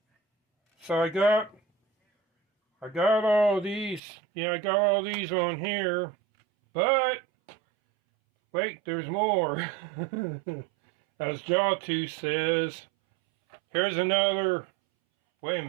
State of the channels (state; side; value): drops out; left; at 4.0 s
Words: So I got all these. Yeah, I got all these on here. But wait, there's more. As Jawtooth says, here's another. Wait a